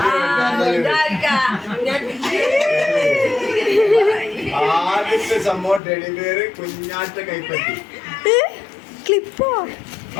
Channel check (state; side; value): drops out; right; at 5.8 s